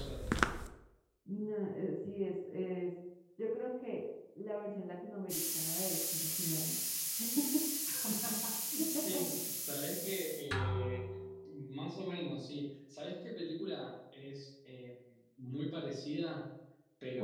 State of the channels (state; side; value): identical; both; correlation 1.00